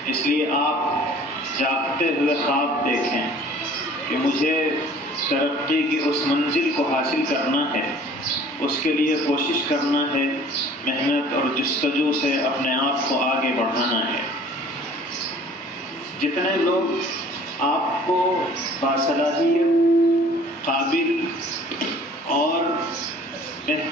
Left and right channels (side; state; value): both; normal; correlation 0.50